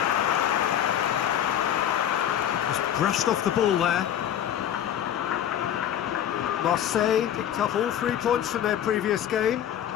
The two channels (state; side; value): quieter; right; 10.4 dB